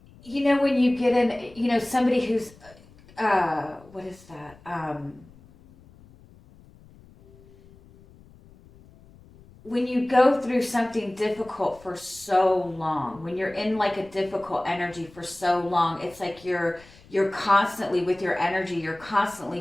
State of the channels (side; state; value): left; noise; rumble, 25 dB below the sound